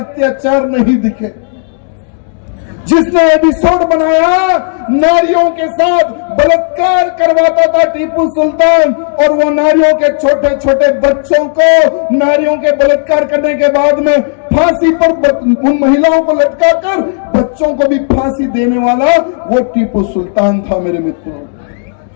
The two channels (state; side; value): silent; right; digital silence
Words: नहीं दिखे। जिसने एपिसोड बनाया नारियों के साथ बलात्कार करवाता था टीपू सुल्तान, और वो नारियों के छोटे छोटे बच्चों को नारियों के बलात्कार करने के बाद में फांसी पर उन महिलाओं को लटकाकर बच्चों को भी फांसी देने वाला वो टीपू सुल्तान था। मेरे मित्रों,